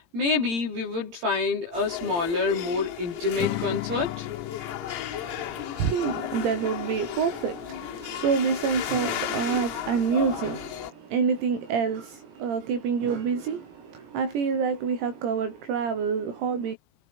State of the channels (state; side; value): late; left; 17 ms